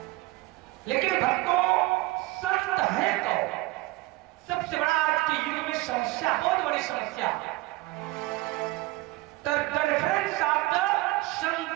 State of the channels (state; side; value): quieter; left; 20.2 dB